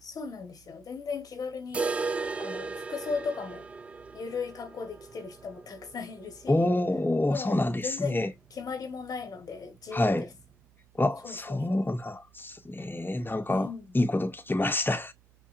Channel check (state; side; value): noise; right; hum, 29 dB below the sound